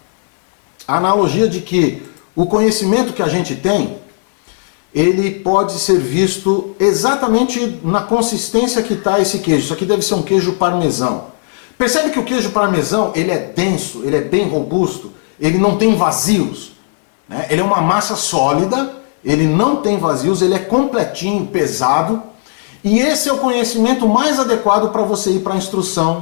A analogia de que o conhecimento que a gente tem, ele pode ser visto exatamente na consistência que está esse queijo. Isso aqui deve ser um queijo parmesão. Percebe que o queijo parmesão, ele é denso, ele é bem robusto, ele não tem vazios, né? Ele é uma massa sólida, ele não tem vazios, ele é completinho, pesado, e esse é o conhecimento mais adequado para você ir para a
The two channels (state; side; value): silent; right; 62 dB below the other